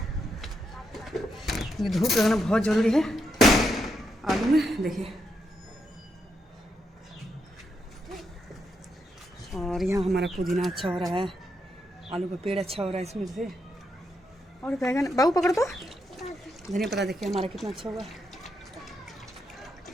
ये धूप लगाना बहुत ज़रूरी है आलू में, देखिए। और यहाँ हमारा पुदीना अच्छा हो रहा है, आलू का पेड़ अच्छा हो रहा है इसमें से। और बैगन बाबू पकड़ तो, धनिया पत्ता देखिए हमारा कितना अच्छा हुआ,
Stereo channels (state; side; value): normal; both; correlation 0.81